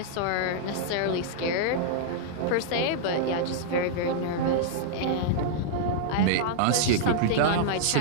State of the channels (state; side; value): different; both; correlation -0.01